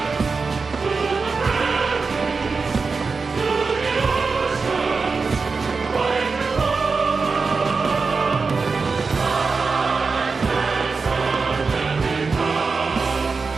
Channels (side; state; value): left; quieter; 4.5 dB